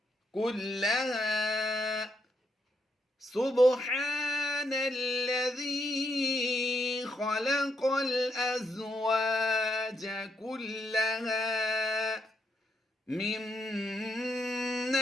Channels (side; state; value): both; normal; correlation 0.78